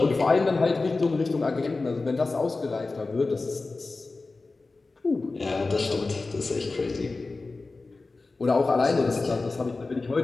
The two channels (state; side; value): quieter; right; 3.6 dB